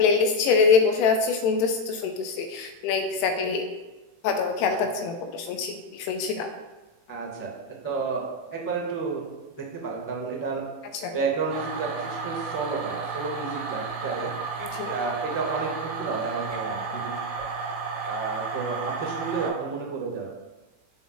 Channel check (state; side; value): late; right; 18 ms